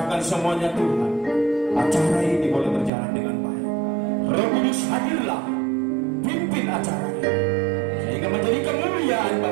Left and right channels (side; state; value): left; drops out; at 2.9 s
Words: semuanya Tuhan. Acara ini boleh berjalan dengan baik. Roh Kudus hadirlah, pimpin acaranya sehingga menjadi kemuliaan